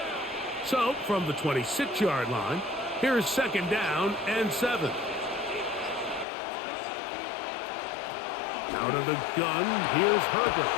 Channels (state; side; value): drops out; right; at 6.2 s